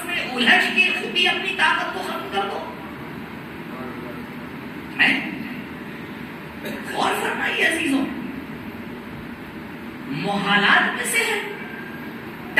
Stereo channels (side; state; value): both; identical; correlation 1.00